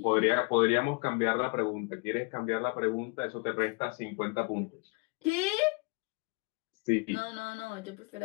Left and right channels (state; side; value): quieter; right; 32.2 dB